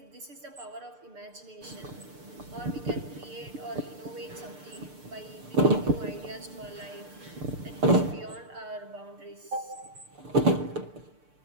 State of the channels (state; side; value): late; left; 6.7 ms